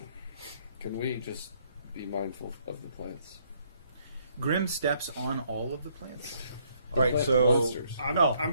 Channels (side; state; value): both; inverted; correlation -0.68